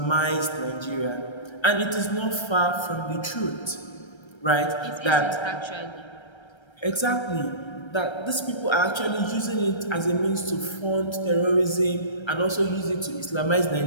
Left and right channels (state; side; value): late; right; 1.3 ms